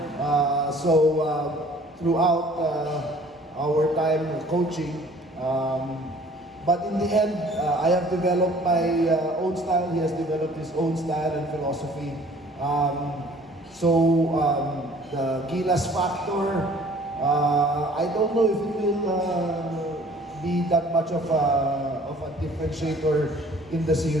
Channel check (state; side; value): normal; both; correlation 0.53